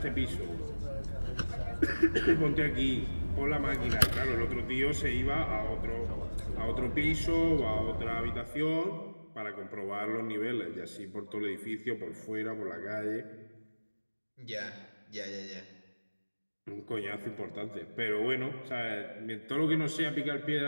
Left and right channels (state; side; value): inverted; both; correlation -1.00